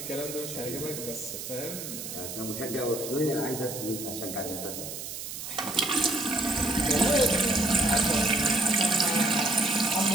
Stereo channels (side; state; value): right; noise; hiss, 8 dB below the sound